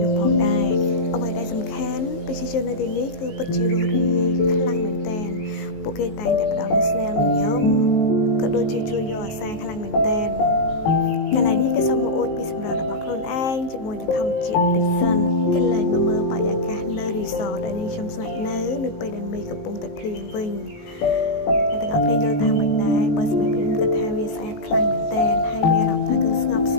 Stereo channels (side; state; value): right; late; 19 ms